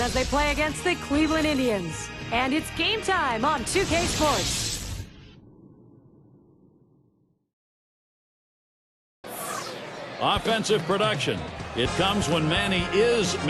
as they play against the Cleveland Indians. And it's game time on 2K Sports. Offensive production. It comes when Manny is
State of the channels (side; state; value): both; identical; correlation 1.00